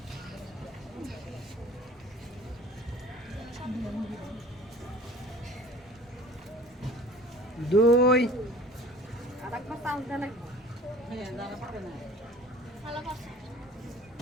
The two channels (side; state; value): both; normal; correlation 0.46